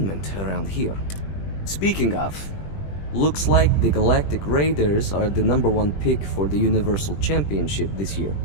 around here. Speaking of, looks like the Galactic Raiders are the #1 pick for the Universal Championship this year.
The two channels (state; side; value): late; right; 20 ms